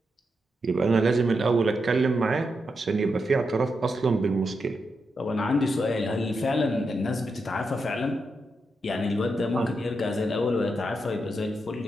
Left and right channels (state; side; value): normal; both; correlation 0.85